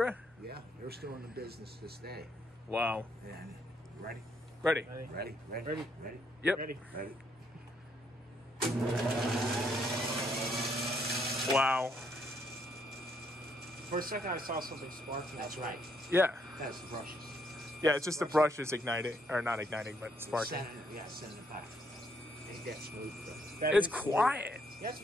Yeah, they're still in the business this day. Wow. And ready, Ready. ready, ready, Ready. ready, Yep. Ready. ready. Wow. For a second, I saw something sparking. That's right. Yeah. That's the brushes. Yeah, it's just the brushes igniting, or not igniting, but sparking. Send it back. Ain't that smooth? That It's is- quiet. Yeah, it's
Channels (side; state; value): both; normal; correlation 0.72